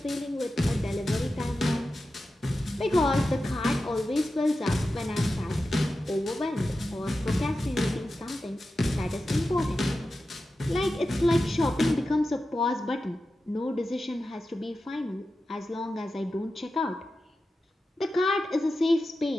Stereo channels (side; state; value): both; normal; correlation 0.92